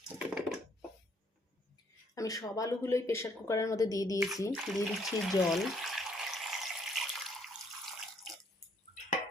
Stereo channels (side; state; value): both; normal; correlation 0.66